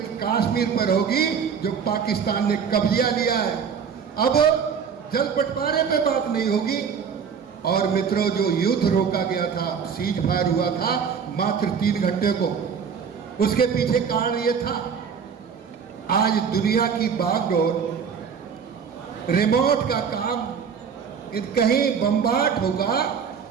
कश्मीर पर होगी जो पाकिस्तान ने कब्जा लिया है। अब जल बंटवारे पे बात नहीं होगी। और मित्रों, जो युद्ध रोका गया था, सीज फायर हुआ था मात्र 3 घंटे को, उसके पीछे कारण यह था, आज दुनिया की बागडोर, रिमोट का काम, कहीं बम्बार्ड होगा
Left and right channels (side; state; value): left; quieter; 6.7 dB